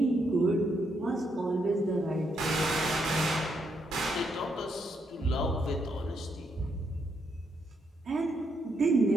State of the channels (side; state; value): both; normal; correlation 0.77